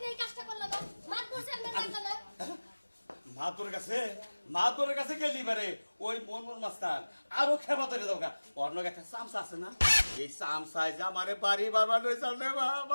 এই কাজটা করলাম না মাত বসে আমি জানতাম না মাতোর কাছে গেলি বারে ওই মন মাস্টার আরো খেবা ধরে দরকার অন্য একটা চামচা আছে না এই চামচায় যে আমারে বাড়ি বারবার রয়েছে রে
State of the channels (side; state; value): both; inverted; correlation -1.00